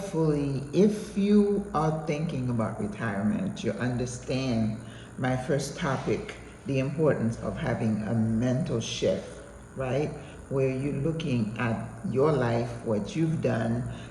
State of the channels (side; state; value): both; identical; correlation 1.00